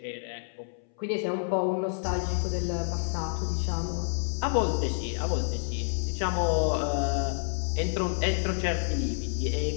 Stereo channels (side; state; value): right; silent; 59 dB below the other